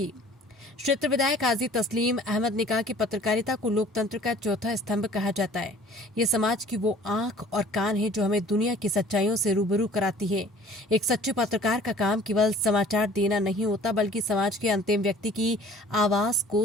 क्षेत्र विधायक हाजी तस्लीम अहमद ने कहा कि पत्रकारिता को लोकतंत्र का चौथा स्तंभ कहा जाता है। ये समाज की वो आंख और कान है जो हमें दुनिया की सच्चाइयों से रूबरू कराती है। एक सच्चे पत्रकार का काम केवल समाचार देना नहीं होता, बल्कि समाज के अंतिम व्यक्ति की आवाज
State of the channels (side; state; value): both; normal; correlation 0.51